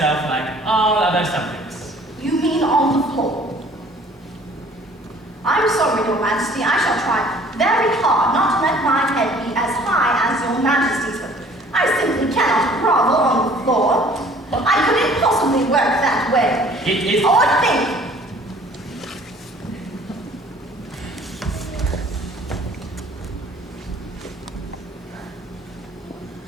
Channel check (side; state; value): both; normal; correlation 0.54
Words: like all other subjects. You mean on the floor? I'm sorry, Your Majesty, I shall try very hard not to let my head be as high as Your Majesty's, but I simply cannot grovel on the floor. I couldn't possibly work that way. It is... Or think.